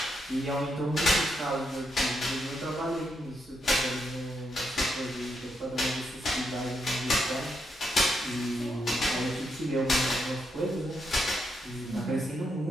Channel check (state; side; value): normal; both; correlation 0.80